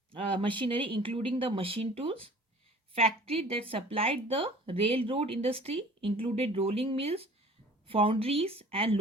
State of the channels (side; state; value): both; normal; correlation 0.47